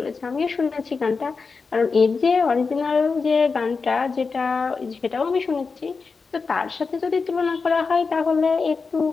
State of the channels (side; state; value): right; quieter; 4.7 dB